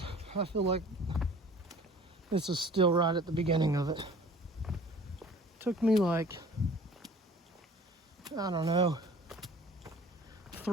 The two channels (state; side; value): normal; both; correlation 0.48